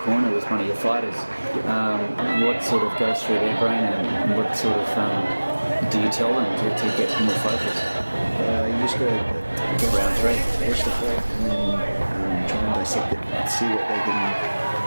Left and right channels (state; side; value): inverted; both; correlation -1.00